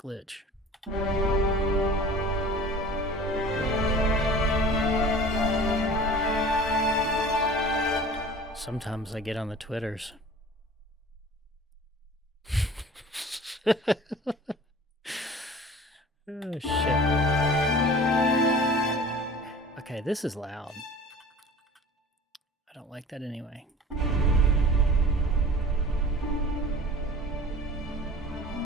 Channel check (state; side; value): normal; both; correlation 0.42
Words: glitch. Sometimes I get on the Twitters. Oh, shit. Okay, this is loud. I don't like that anyway.